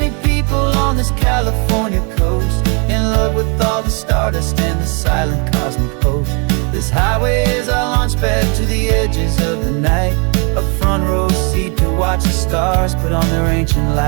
people on this California coast, in love with all the stardust and the silent cosmic host. This highway is our launch pad to the edges of the night, a front row seat to watch the stars put on their ancient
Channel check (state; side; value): quieter; left; 34.8 dB